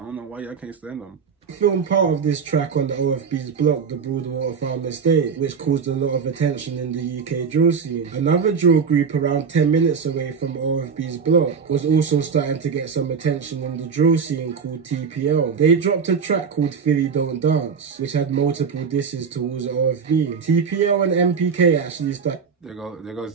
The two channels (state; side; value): quieter; left; 6.0 dB